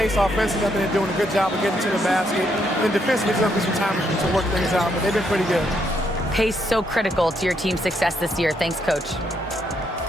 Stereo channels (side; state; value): both; normal; correlation 0.75